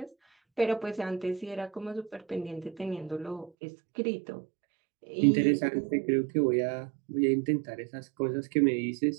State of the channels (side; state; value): left; drops out; at 3.5 s